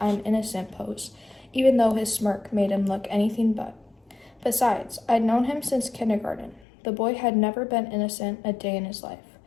"I'm innocent" pose, even though his smirk made him look anything but. Besides, I'd known him since kindergarten. The boy had never been innocent a day in his life.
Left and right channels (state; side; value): drops out; right; at 6.7 s